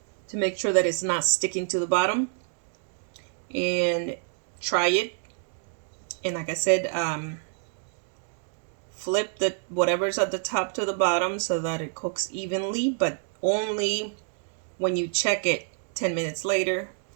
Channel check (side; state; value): left; silent; 60 dB below the other